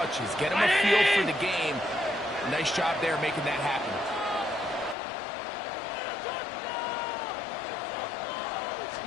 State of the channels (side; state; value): right; drops out; at 5.0 s